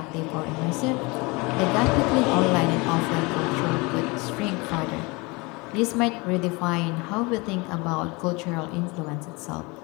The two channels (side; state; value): right; quieter; 26.2 dB